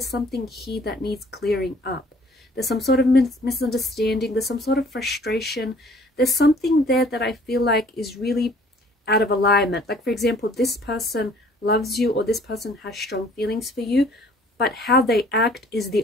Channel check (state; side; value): normal; both; correlation 0.56